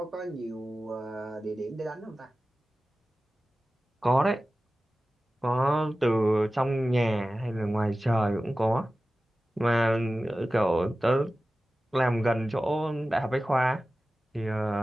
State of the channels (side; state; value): both; normal; correlation 0.95